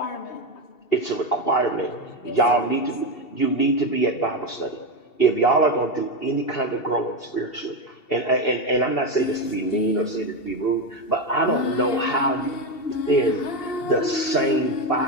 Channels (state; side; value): late; right; 2.7 ms